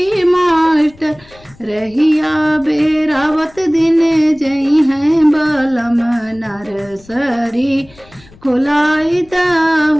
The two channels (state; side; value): noise; left; rumble, 26 dB below the sound